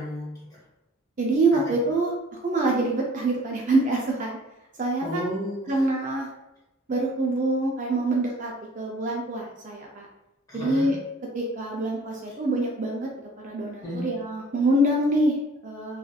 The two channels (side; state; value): both; normal; correlation 0.53